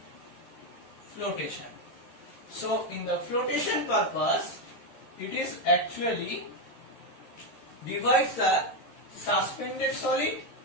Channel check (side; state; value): right; late; 13 ms